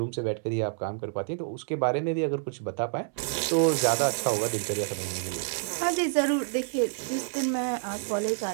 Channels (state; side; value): silent; left; 59 dB below the other